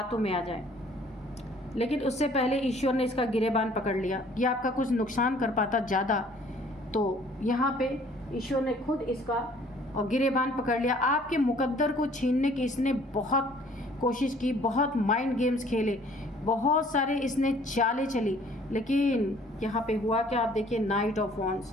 में आ जाए। लेकिन उससे पहले ईश्वर ने इसका गिरेबान पकड़ लिया। ये आपका कुछ नुकसान कर पाता ज़्यादा, तो यहाँ पे ईश्वर ने खुद इसका और गिरेबान पकड़ लिया। आपके मुकद्दर को छीनने की इसने बहुत कोशिश की, बहुत माइंड गेम्स खेले, बहुत सारे इसने चालें चली, लेकिन यहाँ पे हुआ क्या, आप देखिए नाइट ऑफ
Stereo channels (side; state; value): both; normal; correlation 0.56